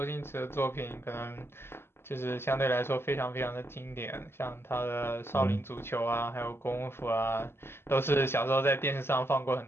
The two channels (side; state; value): right; late; 0.12 ms